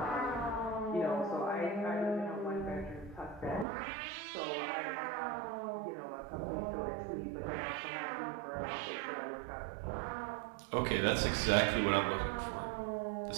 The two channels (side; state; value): left; drops out; at 3.7 s